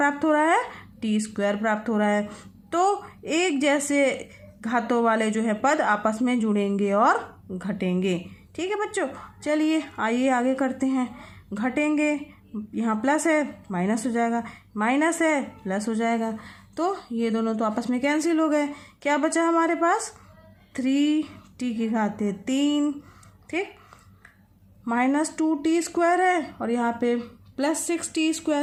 हो रहा है? t² प्राप्त हो रहा है। तो एक जैसे घातों वाले जो है पद आपस में जुड़ेंगे और घटेंगे। ठीक है बच्चों, चलिए आइए आगे करते हैं। घटेंगे, यहाँ प्लस है माइनस हो जाएगा, माइनस है प्लस हो जाएगा। तो ये दोनों तो आपस में कैंसिल हो गए। क्या बचा हमारे पास? 3t⁵ ठीक, -2t² है और यहाँ पे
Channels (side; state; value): both; identical; correlation 1.00